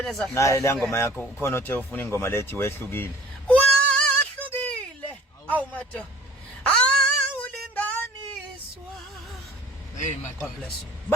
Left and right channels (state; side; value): normal; both; correlation 0.49